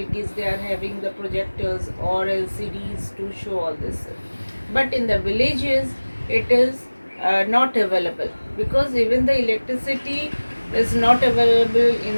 They are having the projectors or LCDs to show all this. But in the villages it is not available, because even the electricity is not available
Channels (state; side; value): inverted; both; correlation -1.00